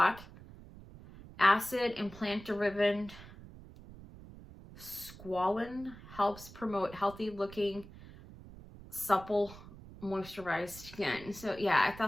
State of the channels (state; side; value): noise; right; rumble, 17 dB below the sound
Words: acid and plant-derived squalene helps promote healthy-looking, supple, moisturized skin. So yeah, I